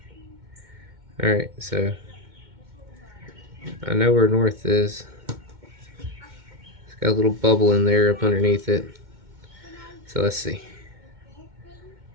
Alright, so I know where north is. It's got a little bubble in there up underneath it. So let's see.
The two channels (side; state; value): left; late; 2.2 ms